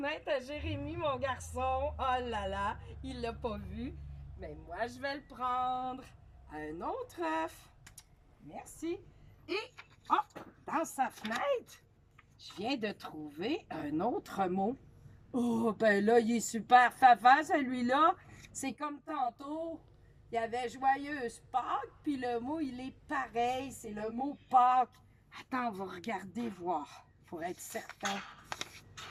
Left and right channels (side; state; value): both; identical; correlation 1.00